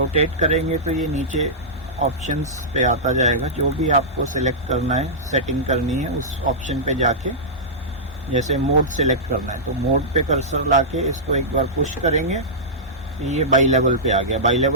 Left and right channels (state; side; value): normal; both; correlation -0.13